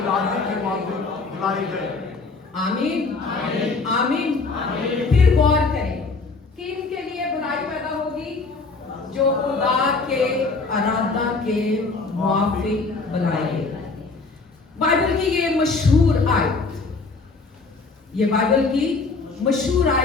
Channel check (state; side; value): quieter; right; 4.0 dB